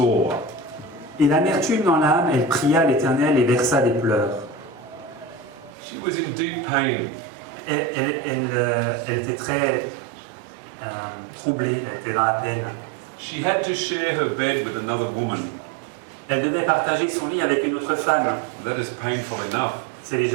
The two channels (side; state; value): left; drops out; at 5.7 s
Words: et l'amertume dans l'âme, elle pria l'Éternel et versa des pleurs. She was in deep pain. Elle était très troublée, elle était dans la peine. She had to share her bed with another woman. Elle devait partager son lit avec une autre femme. That is painful enough. C'est